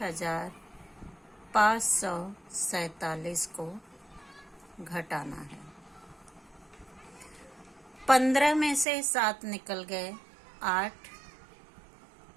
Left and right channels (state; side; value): drops out; left; at 8.8 s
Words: को घटाना है। 15 में से 7 निकल गए 8।